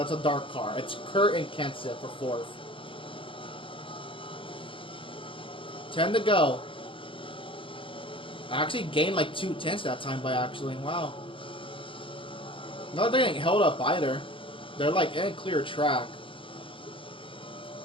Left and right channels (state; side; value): late; right; 0.25 ms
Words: a dark car. It's Kurt and Kenseth for fourth. 10 to go. I actually gained like 2 tenths that time by actually. Wow. Not getting held up either. They're like in a clear track.